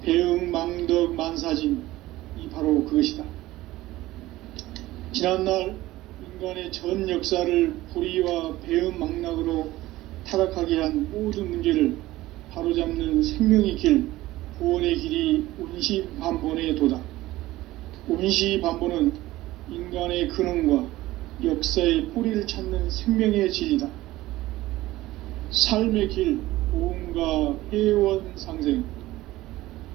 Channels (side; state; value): left; quieter; 17.1 dB